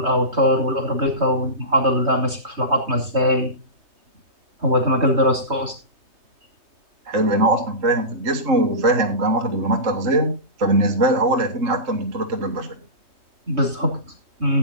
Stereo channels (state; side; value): late; left; 3.2 ms